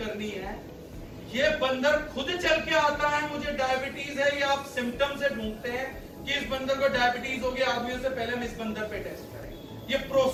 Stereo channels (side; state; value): both; identical; correlation 1.00